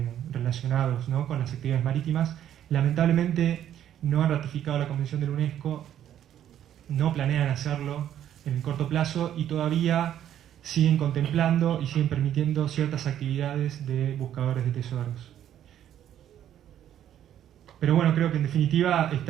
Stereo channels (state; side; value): quieter; left; 10.8 dB